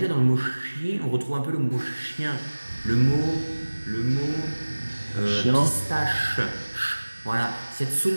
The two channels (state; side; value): inverted; both; correlation -1.00